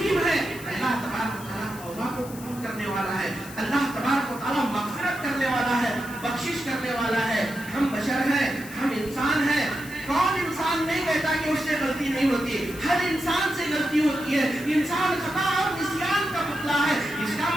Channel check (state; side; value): noise; left; hiss, 16 dB below the sound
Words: ہے. اللہ تبارک و تعالیٰ توبہ کو قبول کرنے والا ہے. اللہ تبارک و تعالیٰ مغفرت کرنے والا ہے، بخشش کرنے والا ہے. ہم بشر ہیں، ہم انسان ہیں. کون انسان نہیں کہتا کہ اس سے غلطی نہیں ہوتی؟ ہر انسان سے غلطی ہوتی ہے. انسان خطا اور نسیان کا پتلا ہے. اس کا